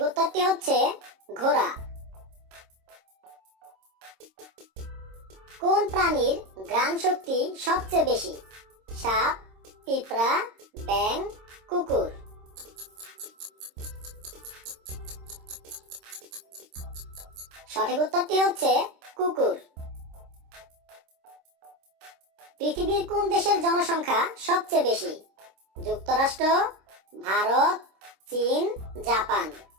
উত্তরটি হচ্ছে ঘোড়া। কোন প্রাণীর ঘ্রাণ শক্তি সবচেয়ে বেশি? সাপ, পিঁপড়া, ব্যাঙ, কুকুর? সঠিক উত্তরটি হচ্ছে কুকুর। পৃথিবীর কোন দেশের জনসংখ্যা সবচেয়ে বেশি? যুক্তরাষ্ট্র, ভারত, চীন, জাপান?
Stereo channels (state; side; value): late; left; 26 ms